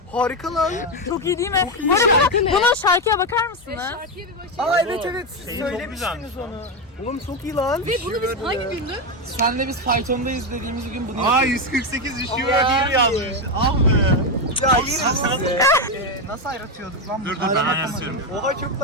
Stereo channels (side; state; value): both; normal; correlation 0.09